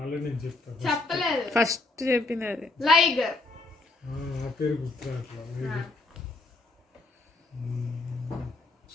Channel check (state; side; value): quieter; right; 3.3 dB